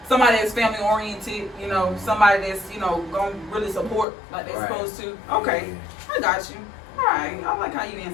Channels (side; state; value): right; drops out; at 4.0 s